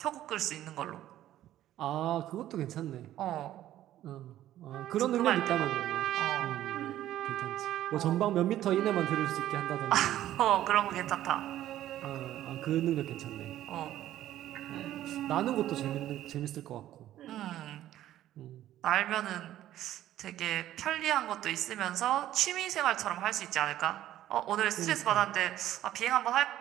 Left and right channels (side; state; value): left; quieter; 13.0 dB